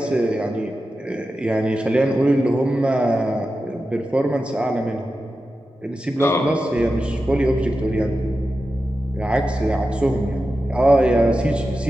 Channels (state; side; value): normal; both; correlation 0.92